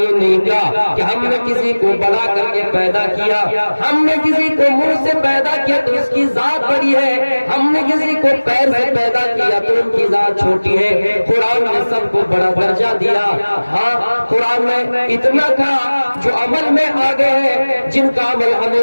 नहीं कहा कि हमने किसी को बड़ा करके पैदा किया, हमने किसी को मुंह से पैदा किया तो उसकी जात बड़ी है, हमने किसी को पैर से पैदा किया तो उनकी जात छोटी है। कुरान ने सबको बड़ा दर्जा दिया। हाँ, कुरान ने इतना कहा जो अमल में आगे है, जिनका अमल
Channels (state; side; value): inverted; both; correlation -1.00